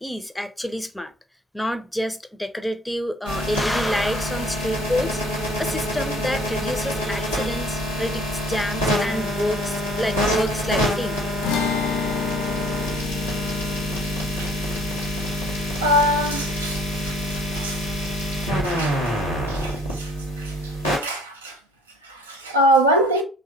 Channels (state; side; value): normal; both; correlation 0.54